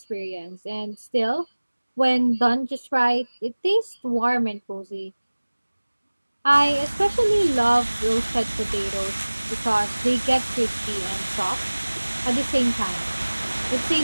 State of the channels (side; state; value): both; inverted; correlation -1.00